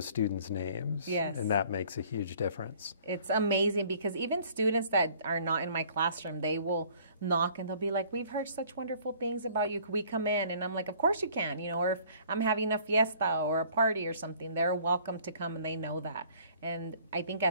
students' names, and that makes a huge difference. It's amazing because even students that are not in my classroom, they will knock and they'll be like, we've heard such wonderful things about you. Could we come in? And I'm like, of course you can, you know, or if I'm having a fiesta or a party or something, they're welcome to come and they know that. And I think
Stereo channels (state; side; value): inverted; both; correlation -0.55